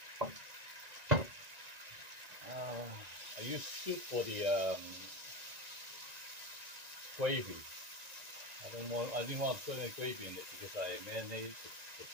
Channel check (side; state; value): left; late; 1.9 ms